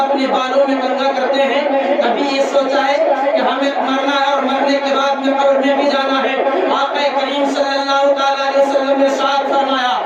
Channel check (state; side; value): identical; both; correlation 1.00